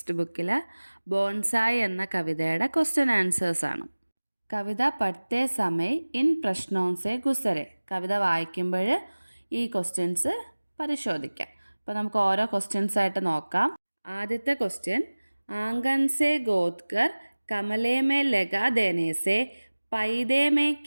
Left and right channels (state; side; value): inverted; both; correlation -1.00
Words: ബുക്കിലെ ബോൺസായി എന്ന കവിതയുടെ ക്വസ്റ്റ്യൻ ആൻസേഴ്സാണ്. Kavitha പഠിത്തേ Samay in പ്രശ്നോംസെ ഗുസരെ. കവിത വായിക്കുമ്പോൾ ഈ ക്വസ്റ്റ്യൻസ് പരിശോധിക്കാം. അപ്പോൾ നമുക്ക് ഓരോ ക്വസ്റ്റ്യൻസ് ആയിട്ട് നോക്കാം. ആദ്യത്തെ ക്വസ്റ്റ്യൻ, ആംഗൻ സെ ഗോദ്കർ കമലേ മേ ലഗാ ദേനെ സെ പൈതേ മേ